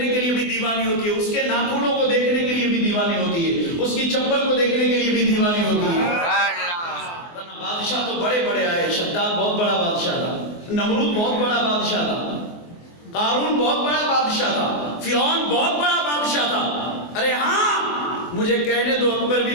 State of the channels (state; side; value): late; right; 24 ms